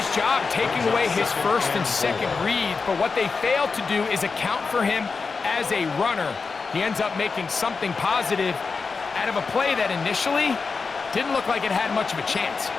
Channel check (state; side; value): quieter; right; 4.7 dB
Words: job taking away his first and second read, but what they fail to do is account for him as a runner. He ends up making something positive out of a play that initially didn't look like it had much of a chance.